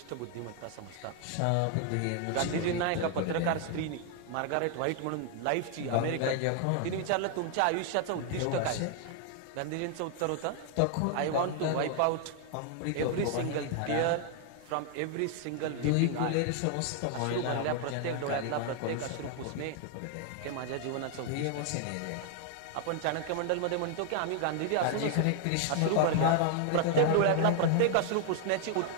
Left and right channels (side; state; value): both; different; correlation 0.00